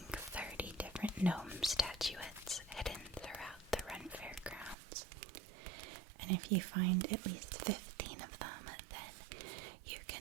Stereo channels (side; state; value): left; drops out; at 4.8 s